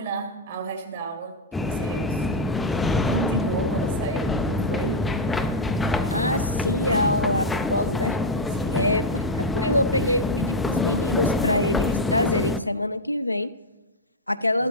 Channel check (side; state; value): both; normal; correlation -0.02